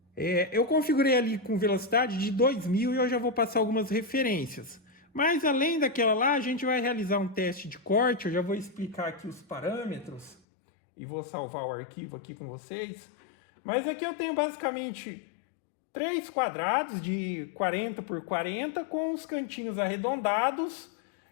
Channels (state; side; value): drops out; right; at 10.4 s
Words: eu configurei ali com velocidade de 2000 e eu já vou passar algumas referências. Mas além daquela lá, a gente vai realizar um teste de corte. Eu já vou explicar aqui os parâmetros e vou salvar o arquivo aqui com vocês. Mas aqui eu tenho basicamente 3 quadrados de 40 por 40 com os cantinhos arredondados